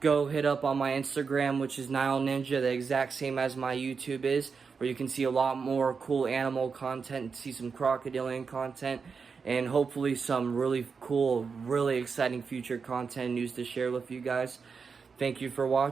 go hit up on my Instagram, which is Nile Ninja, the exact same as my YouTube is, where you can see a lot more cool animal content, see some crocodilian content, and hopefully some really cool, really exciting future content news to share with you guys. Thank you for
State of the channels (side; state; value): left; quieter; 5.4 dB